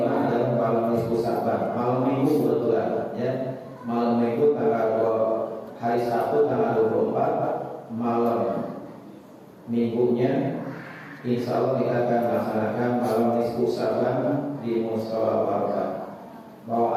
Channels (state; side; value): identical; both; correlation 1.00